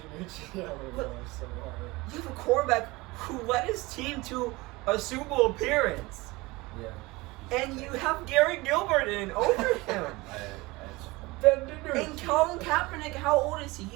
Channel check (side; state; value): left; quieter; 22.3 dB